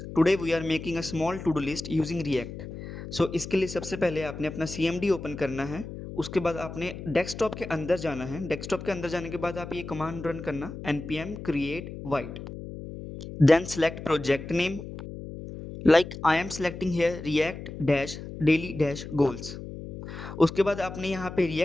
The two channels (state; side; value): noise; left; hum, 10 dB below the sound